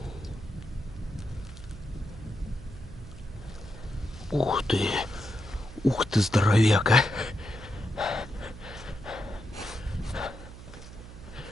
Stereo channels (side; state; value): right; noise; hum, 14 dB below the sound